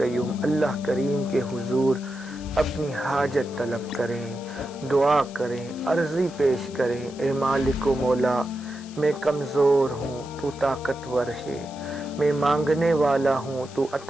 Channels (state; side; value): noise; left; hiss, 20 dB below the sound